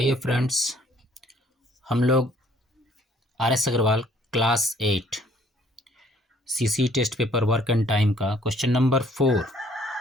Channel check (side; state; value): both; normal; correlation 0.61